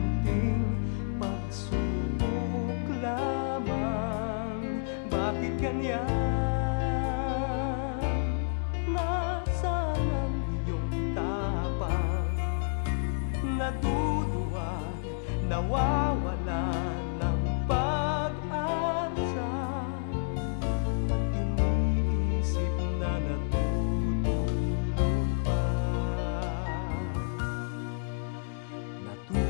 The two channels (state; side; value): silent; right; digital silence